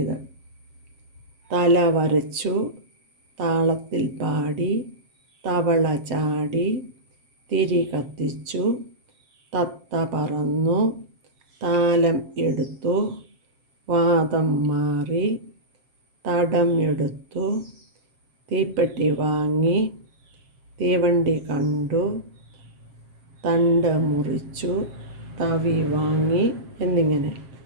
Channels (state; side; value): late; left; 7.6 ms